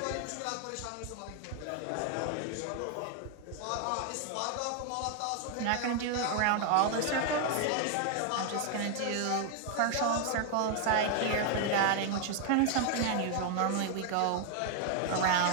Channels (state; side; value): different; both; correlation 0.00